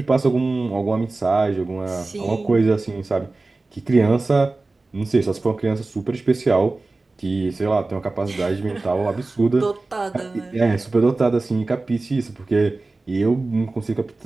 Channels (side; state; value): left; quieter; 3.3 dB